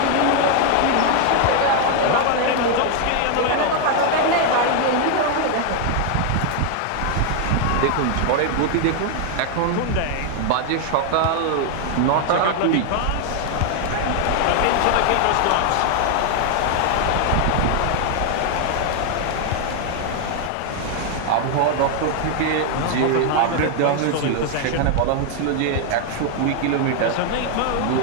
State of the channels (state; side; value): different; both; correlation 0.00